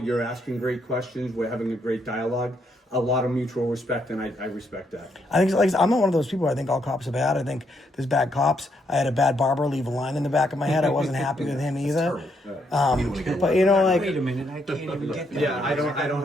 asking great questions. We're having a great dialogue. A lot of mutual respect, and I respect that. I think like I'm not one of those people. I think all cops are bad. I think there's bad cops. I had a bad barber leave a line in the back of my head. I wasn't happy with him either. But you know, like, Wait a minute, I can't even get that. Yeah, I don't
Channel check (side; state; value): both; normal; correlation 0.75